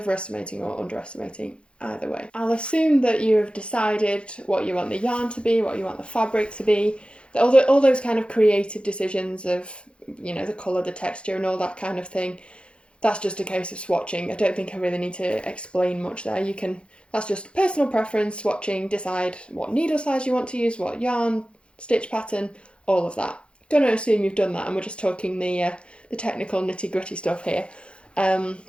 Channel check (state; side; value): late; right; 0.057 ms